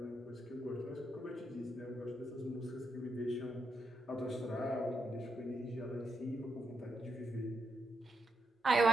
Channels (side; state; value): both; normal; correlation 0.81